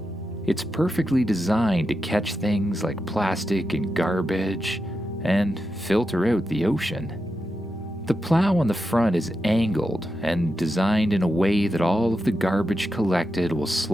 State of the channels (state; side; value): normal; both; correlation 0.88